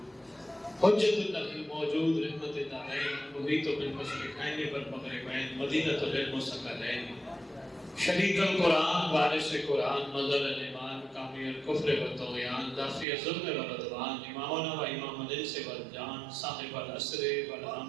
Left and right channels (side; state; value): left; drops out; at 13.1 s